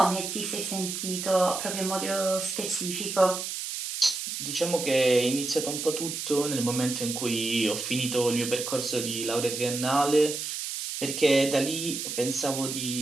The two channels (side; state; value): right; noise; hiss, 5 dB below the sound